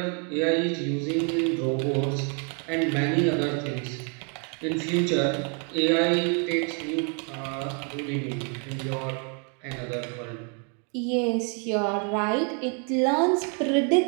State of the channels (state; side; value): quieter; left; 38.6 dB